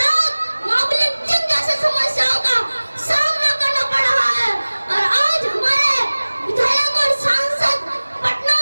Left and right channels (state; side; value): inverted; both; correlation -1.00